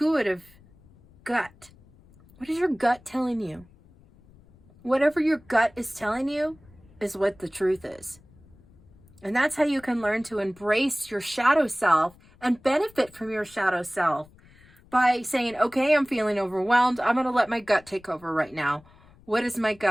gut. What is your gut telling you? Whatever your gut is telling you is what the truth is. And that's how you can learn to embrace your shadow self and benefit from your shadow self. By saying, okay, I'm feeling overwhelmed. I'm going to let my gut take over right now. What is my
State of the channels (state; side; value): noise; left; rumble, 27 dB below the sound